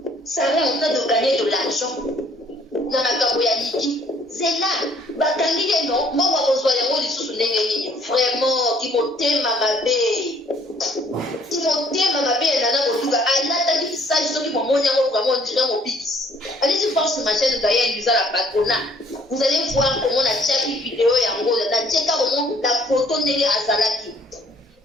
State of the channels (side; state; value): both; normal; correlation 0.60